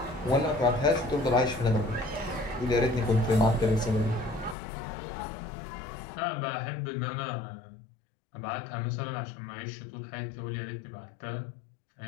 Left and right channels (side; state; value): right; drops out; at 4.5 s